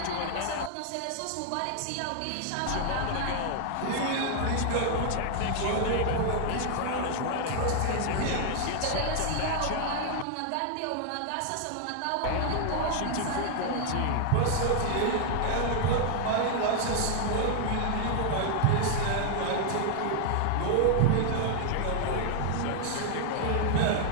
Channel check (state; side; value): different; both; correlation 0.00